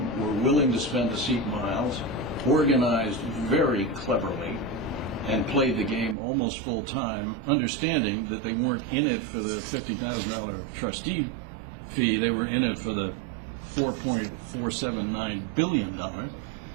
were willing to spend the seat miles, organized very cleverly, and played the game almost full time, understanding that they weren't in it for the $50,000 trustee fee, they were in it for the $4.479 billion.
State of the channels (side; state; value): left; drops out; at 6.2 s